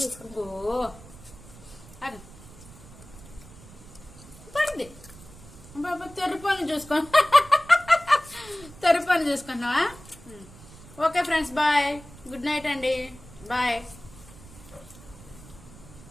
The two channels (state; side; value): noise; right; rumble, 19 dB below the sound